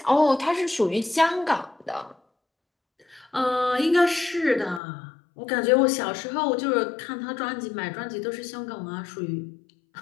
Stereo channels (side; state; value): right; drops out; at 4.8 s